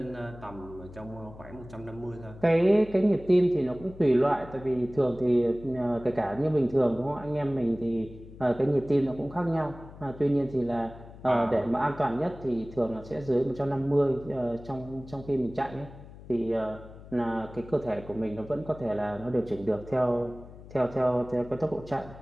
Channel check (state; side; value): noise; left; hum, 17 dB below the sound